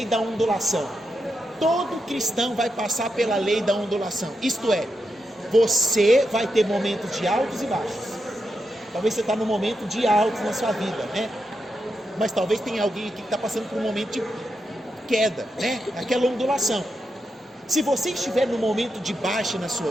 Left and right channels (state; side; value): normal; both; correlation 0.86